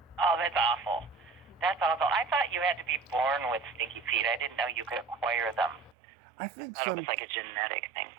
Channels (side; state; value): left; drops out; at 6.0 s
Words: Oh, that's awful. That's awful. I thought you had to be born with stinky feet. I didn't know you could acquire them. I think I thought it was like a genetic thing.